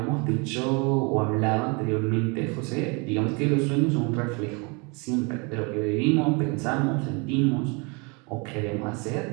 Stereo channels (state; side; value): quieter; left; 31.1 dB